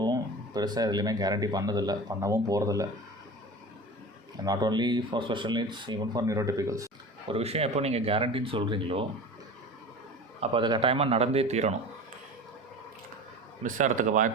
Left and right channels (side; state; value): both; normal; correlation 0.34